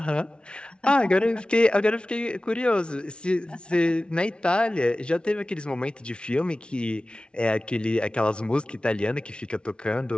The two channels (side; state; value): right; late; 0.057 ms